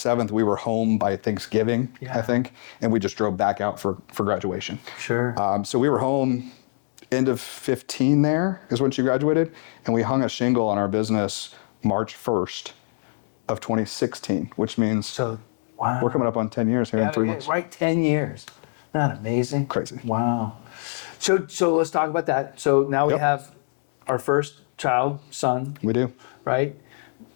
We were home by Thanksgiving, I think. And we just drove back out for graduation. Sure. So we were home end of 15 there is when she graduated. And we hung a shingle on our business March 1st of 2016, which means wow. We're coming up on 10 years here in 3 months. Right, 10 years. Isn't that amazing? Crazy. Wow. So let's talk about that. So now we have our first child, son. We do. Right?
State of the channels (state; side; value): silent; right; 62 dB below the other